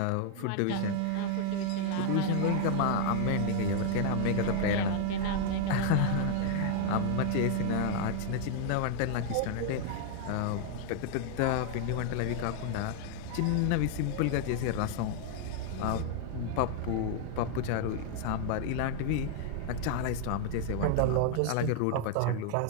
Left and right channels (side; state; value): both; different; correlation 0.00